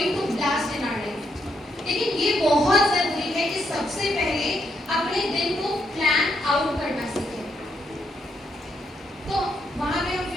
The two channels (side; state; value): both; normal; correlation 0.78